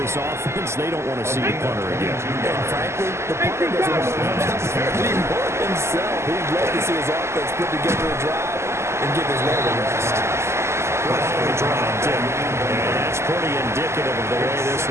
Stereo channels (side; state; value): left; late; 0.13 ms